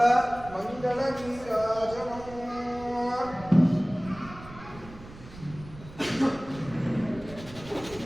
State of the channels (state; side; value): noise; right; rumble, 17 dB below the sound